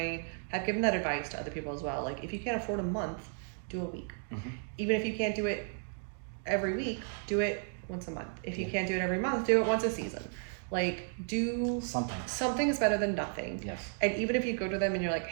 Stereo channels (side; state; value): left; silent; 55 dB below the other